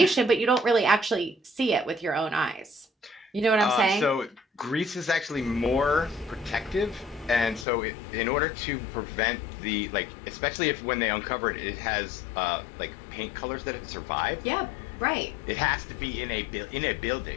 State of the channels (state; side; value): drops out; right; at 7.7 s